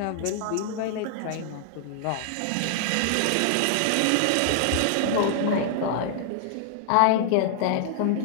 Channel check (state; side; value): different; both; correlation -0.01